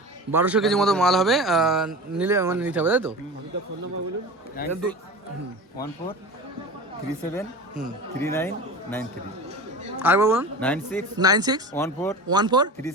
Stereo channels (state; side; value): normal; both; correlation 0.32